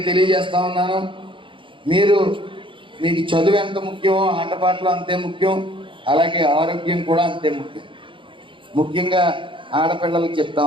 తెలియజేస్తా ఉన్నాను, మీకు చదువు ఎంత ముఖ్యమో ఆటపాటలు అంతే ముఖ్యం, అలాగే ఆరోగ్యం కూడా అంతే ముఖ్యం. ముఖ్యంగా ఆడపిల్లలకు చెప్తా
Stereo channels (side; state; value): left; late; 0.24 ms